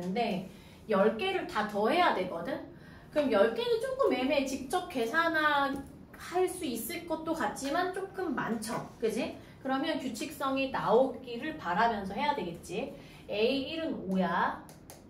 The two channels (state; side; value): identical; both; correlation 1.00